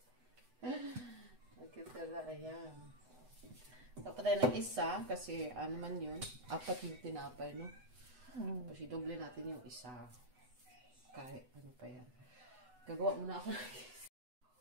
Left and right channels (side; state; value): left; late; 8.0 ms